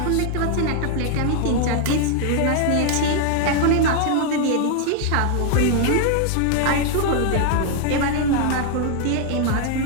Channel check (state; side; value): different; both; correlation 0.00